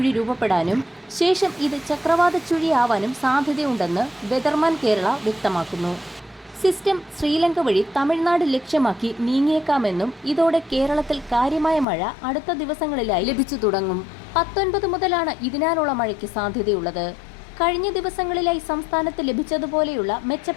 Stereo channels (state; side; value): drops out; right; at 11.9 s